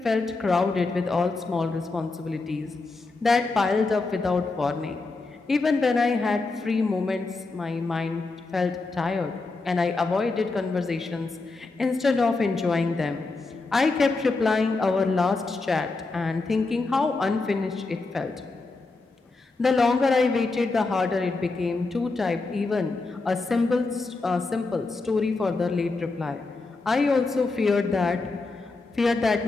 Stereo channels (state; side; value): quieter; right; 3.6 dB